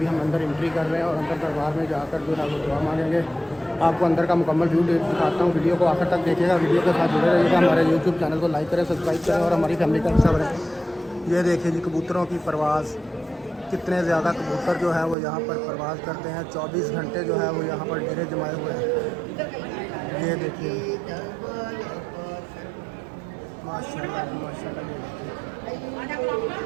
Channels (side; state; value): left; drops out; at 15.2 s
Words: हम अंदर एंट्री कर रहे हैं और अंदर दरबार में जाकर जो है वो दुआ मांगेंगे। आपको अंदर का मुकम्मल व्यू दिखाता हूँ। वीडियो को आखिर तक देखिएगा, वीडियो के साथ जुड़े रहिएगा। हमारे यूट्यूब चैनल को लाइक करें, सब्सक्राइब करें और हमारी फैमिली का हिस्सा बनें। ये देखिए जी, कबूतरों की परवाज़, कितने ज़्यादा कबूतर जो है वो यहाँ पर परवाज़ करते हैं। 24 घंटे जो है वो यहाँ पर डेरे जमाए हुए हैं। ये देखिए, माशाल्लाह माशाल्लाह।